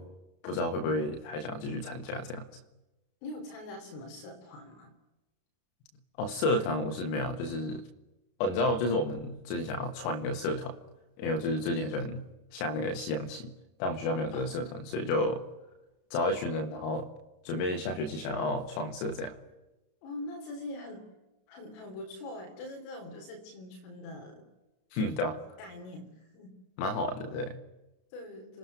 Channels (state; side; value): late; right; 32 ms